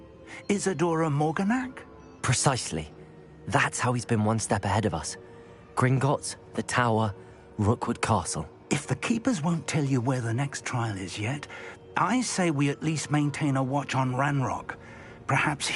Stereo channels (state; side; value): identical; both; correlation 1.00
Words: Isadora Morganac? Precisely. That's how he's been one step ahead of us. Gringotts, the Tower, Rookwood Castle. If the Keepers won't tell you where the next trial is yet, I say we at least maintain a watch on Ranrock. Perhaps